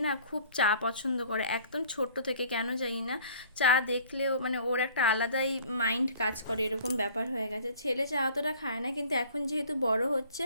না খুব চা পছন্দ করে, একদম ছোট্ট থেকে, কেন জানি না চা দেখলেও মানে ওর একটা আলাদাই মাইন্ড কাজ করে, এরকম ব্যাপার হয়ে গেছে। ছেলে চা অতটা খায় না, কিন্তু এখন যেহেতু বড় হচ্ছে,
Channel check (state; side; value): inverted; both; correlation -0.51